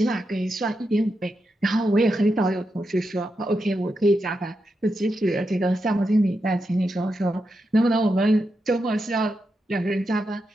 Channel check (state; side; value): normal; both; correlation 0.86